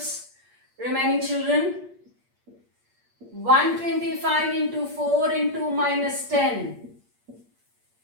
Remaining children. 125 into 4 into minus 10.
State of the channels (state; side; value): late; left; 8.5 ms